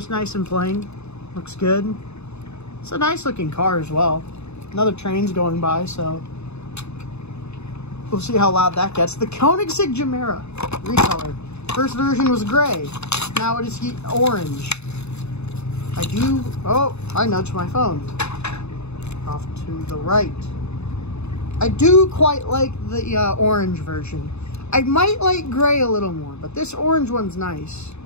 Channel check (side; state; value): right; late; 0.80 ms